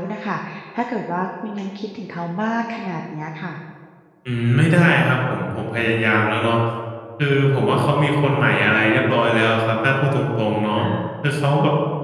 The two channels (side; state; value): both; identical; correlation 1.00